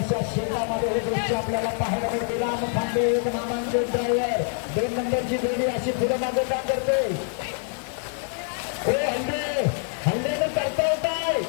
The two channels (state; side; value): silent; right; 61 dB below the other